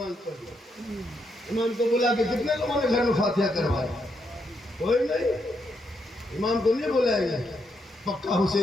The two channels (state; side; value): normal; both; correlation 0.79